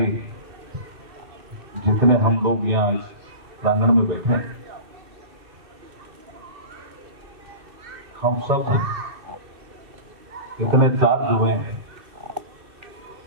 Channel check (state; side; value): late; left; 2.4 ms